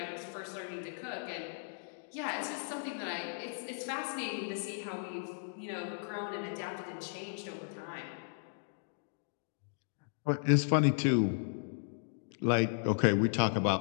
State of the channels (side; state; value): right; silent; digital silence